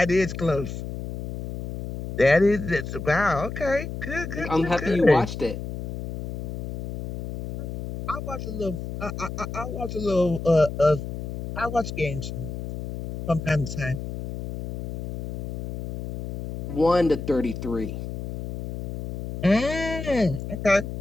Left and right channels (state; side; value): noise; left; hum, 7 dB below the sound